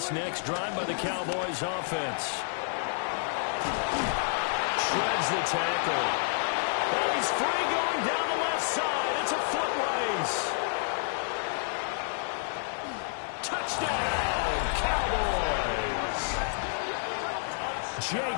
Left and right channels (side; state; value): right; silent; digital silence